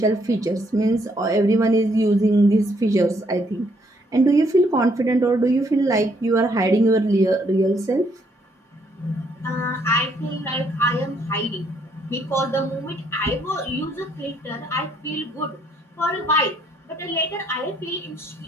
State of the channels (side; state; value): both; normal; correlation 0.70